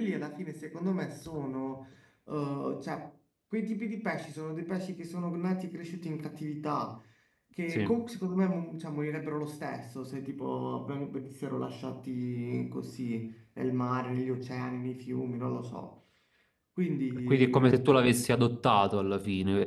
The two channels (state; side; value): identical; both; correlation 1.00